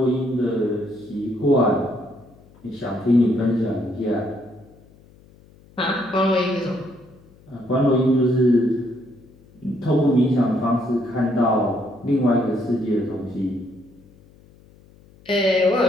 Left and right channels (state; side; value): noise; left; hum, 27 dB below the sound